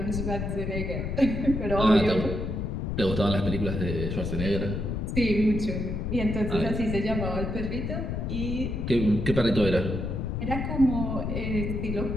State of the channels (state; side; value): noise; left; rumble, 2 dB below the sound